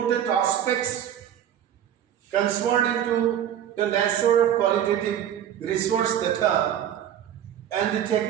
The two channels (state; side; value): quieter; left; 10.2 dB